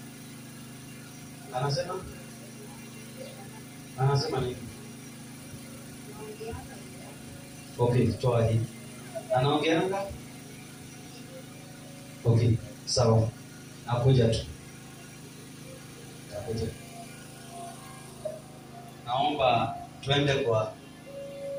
Anasema nini? Okay, toa hii. Anaongeanga? Okay, sawa. Nakuja tu. Naomba twende kwa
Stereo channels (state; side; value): identical; both; correlation 1.00